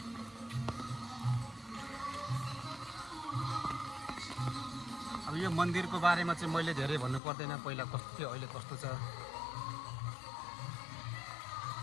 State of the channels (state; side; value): drops out; right; at 7.2 s